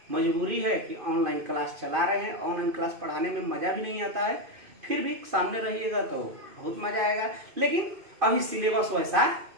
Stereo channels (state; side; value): late; left; 2.5 ms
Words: मजबूरी है कि ऑनलाइन क्लास चला रहे हैं, ऑनलाइन क्लास पढ़ाने में मजा भी नहीं आता है, फिर भी सामने रहिएगा तो बहुत मजा आएगा। लेकिन अभी सिलेबस वैसा